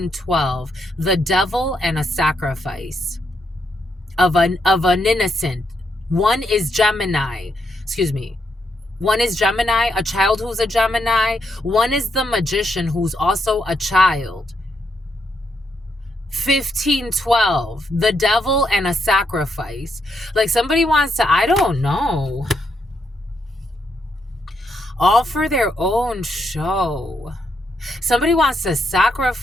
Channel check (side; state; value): both; normal; correlation 0.79